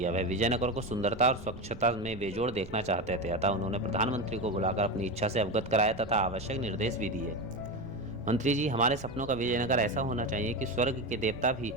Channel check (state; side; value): noise; right; rumble, 16 dB below the sound